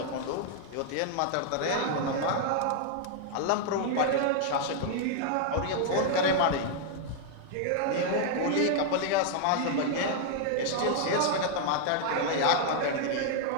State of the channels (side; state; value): both; different; correlation 0.00